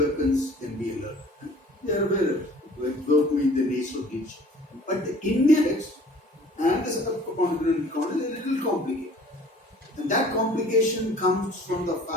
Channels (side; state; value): both; normal; correlation 0.50